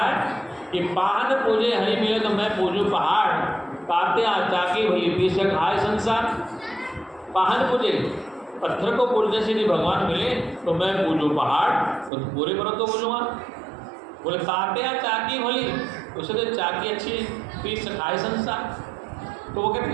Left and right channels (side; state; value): left; drops out; at 12.1 s